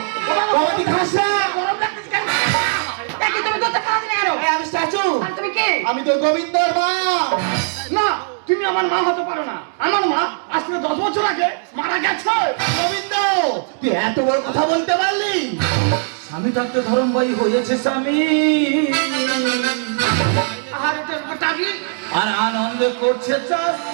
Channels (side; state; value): left; silent; digital silence